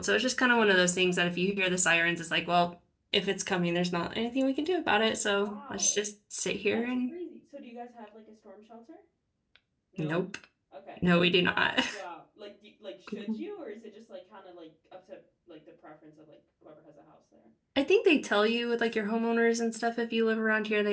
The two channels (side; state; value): both; identical; correlation 1.00